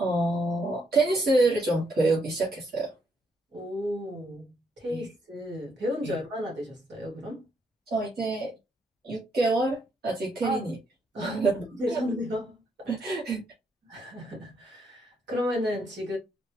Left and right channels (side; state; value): both; normal; correlation 0.75